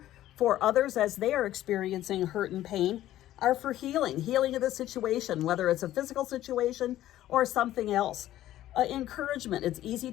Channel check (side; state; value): right; quieter; 13.6 dB